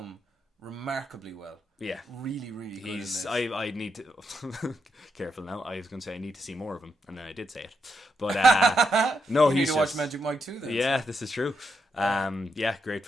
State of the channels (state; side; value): normal; both; correlation 0.82